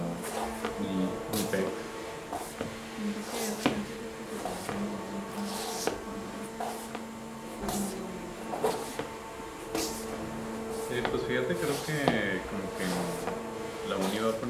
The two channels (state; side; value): identical; both; correlation 1.00